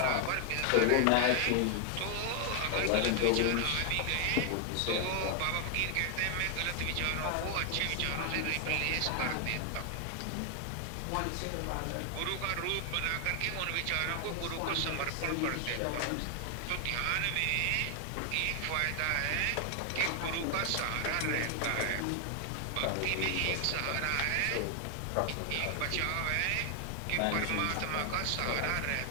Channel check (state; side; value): different; both; correlation 0.00